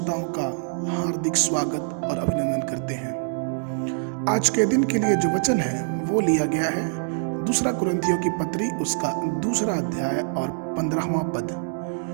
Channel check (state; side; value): silent; left; digital silence